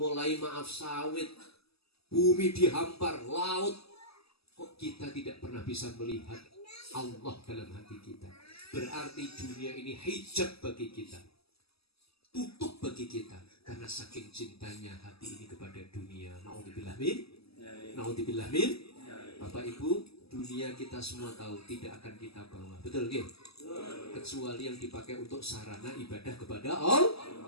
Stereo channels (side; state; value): right; late; 0.77 ms